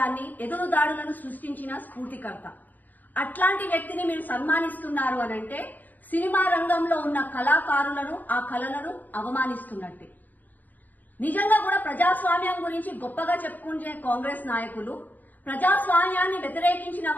ఎదురుదాడులను సృష్టించిన స్ఫూర్తికర్త. అట్లాంటి వ్యక్తిని మీరు సన్మానిస్తున్నారు అనంటే సినిమా రంగంలో ఉన్న కళాకారులను, ఆ కళలను అవమానిస్తున్నట్టే. నిజంగా కూడా ప్రజాస్వామ్యం గురించి గొప్పగా చెప్పుకునే కాంగ్రెస్ నాయకులు ప్రజాస్వామ్యాన్ని వ్యతిరేకించిన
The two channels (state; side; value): late; right; 0.083 ms